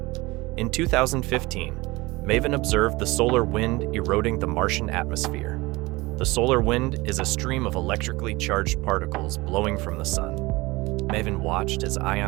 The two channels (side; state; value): left; quieter; 21.9 dB